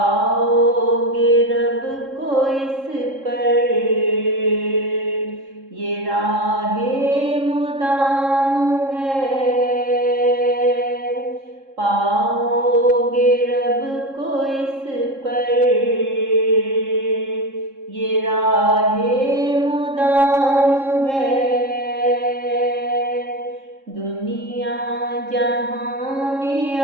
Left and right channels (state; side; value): late; left; 3.7 ms